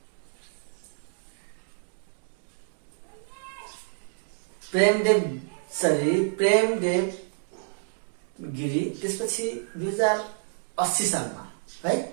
प्रेमदेव गिरी त्यसपछि 2080 सालमा है।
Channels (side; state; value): left; silent; digital silence